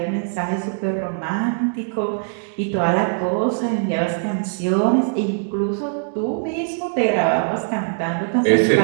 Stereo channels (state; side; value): silent; left; digital silence